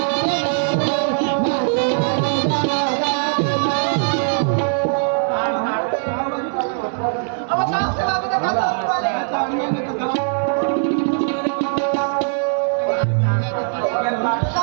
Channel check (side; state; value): left; silent; 66 dB below the other